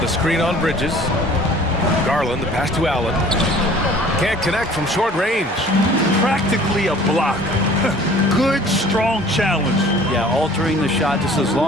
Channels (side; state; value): both; normal; correlation 0.50